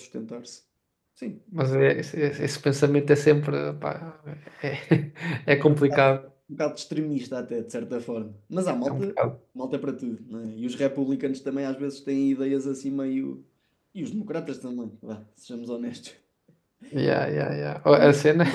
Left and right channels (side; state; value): both; identical; correlation 1.00